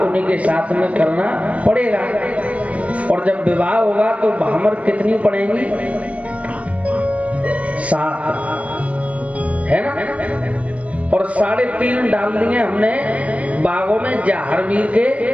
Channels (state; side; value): late; left; 0.065 ms